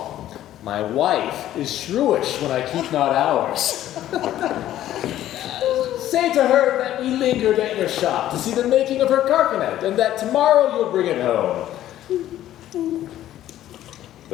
My wife is shrewish when I keep not hours. Say to her that we lingered at your shop to see the making of her carcanet, and that tomorrow you'll bring it home.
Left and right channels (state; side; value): quieter; right; 12.8 dB